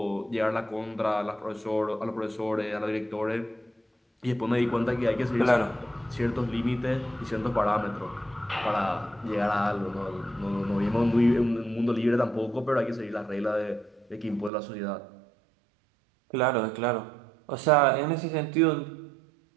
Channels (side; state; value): left; drops out; at 14.5 s